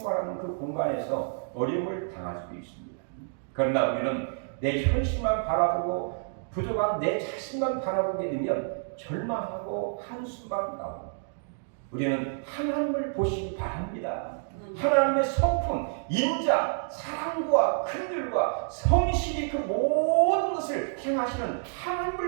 그 공간에서 어려움을 당할 수도 있습니다. 그러나 우리는 내 현실만 바라보고 부족한 내 자신만 바라보게 되면 절망하고 한숨만 나옵니다. 우리는 하나님을 보시기 바랍니다. 하나님의 성품, 인자, 사랑과 긍휼과 성실이 그 모든 것을 행하시는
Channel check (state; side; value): silent; left; digital silence